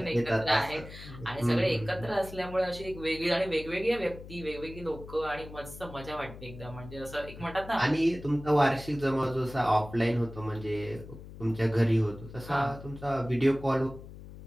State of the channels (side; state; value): left; noise; hum, 15 dB below the sound